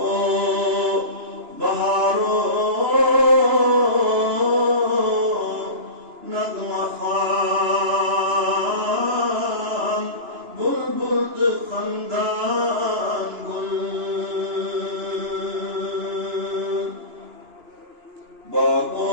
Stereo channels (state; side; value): late; left; 2.9 ms